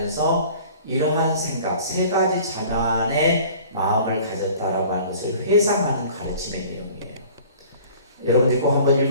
이러한 생각, 세 가지 자만의 마음을 가졌다라고 하는 것을 회상하는 가르침의 내용이에요. 여러분들 꼭 한번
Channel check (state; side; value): inverted; both; correlation -0.48